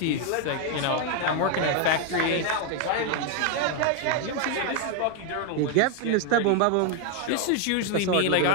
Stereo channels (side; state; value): both; different; correlation 0.01